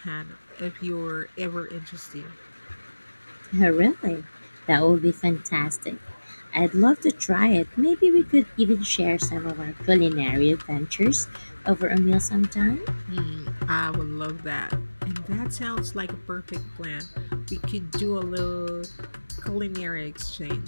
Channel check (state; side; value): inverted; both; correlation -1.00